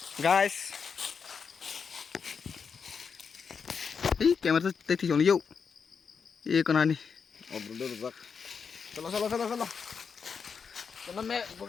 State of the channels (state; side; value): quieter; right; 6.0 dB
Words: guys. Ih, kamera tuh tadi jauh yuk. Iya kena nih. Off-road rusak. Salah. Karena